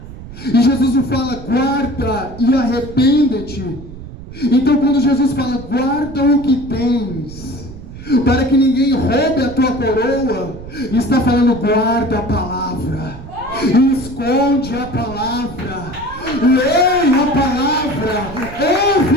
E Jesus não fala: guarda e arrepende-te. Então quando Jesus fala: guarda o que tens, para que ninguém roube a tua coroa, está falando: guarda a palavra, esconde a palavra, leia a palavra, ouve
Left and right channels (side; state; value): right; noise; rumble, 14 dB below the sound